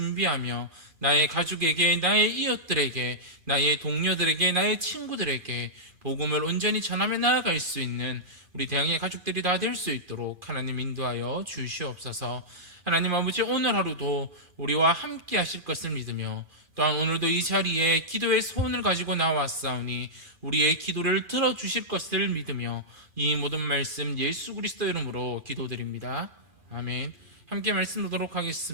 나의 가족에게, 나의 이웃들에게, 나의 동료들에게, 나의 친구들에게 복음을 온전히 전하며 나아갈 수 있는 우리 대항의 가족들이 다 될 수 있도록 하나님 인도하여 주시옵소서. 하나님 아버지, 오늘 하루도 우리와 함께 하실 것을 믿으며 또한 오늘도 이 자리에 기도의 소원을 가지고 나왔사오니 우리의 기도를 들어주실 것을 믿으며 이 모든 말씀 예수 그리스도 이름으로 기도드립니다. 아멘. 함께 말씀 보도록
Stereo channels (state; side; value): late; left; 2.4 ms